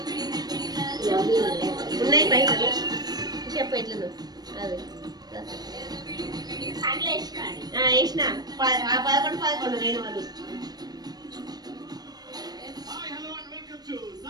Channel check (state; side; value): late; left; 0.19 ms